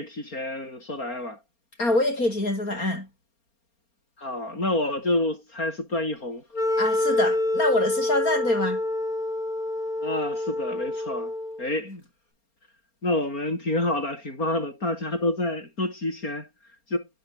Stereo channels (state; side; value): late; right; 4.3 ms